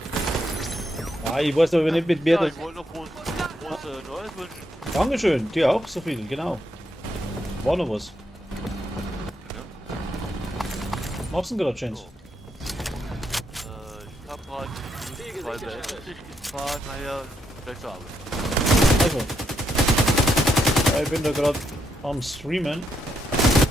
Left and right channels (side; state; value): both; normal; correlation 0.78